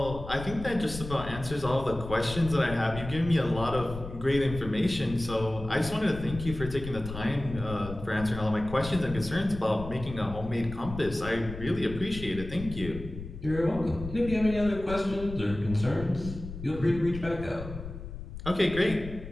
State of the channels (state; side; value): noise; left; rumble, 10 dB below the sound